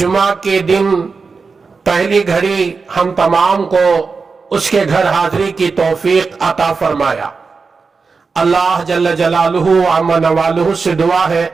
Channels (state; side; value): quieter; left; 4.7 dB